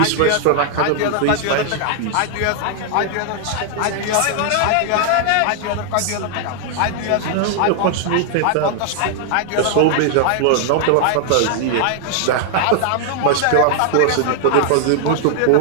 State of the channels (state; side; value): different; both; correlation 0.00